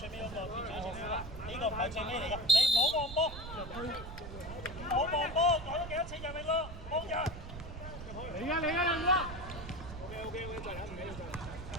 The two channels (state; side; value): noise; right; rumble, 11 dB below the sound